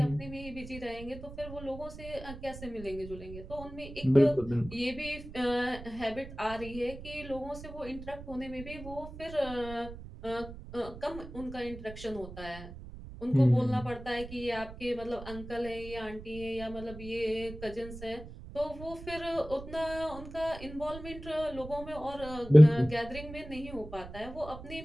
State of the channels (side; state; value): right; noise; rumble, 13 dB below the sound